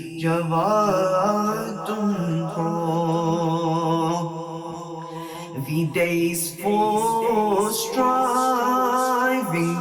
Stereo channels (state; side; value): identical; both; correlation 1.00